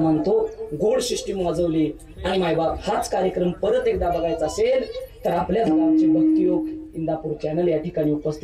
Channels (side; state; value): both; identical; correlation 1.00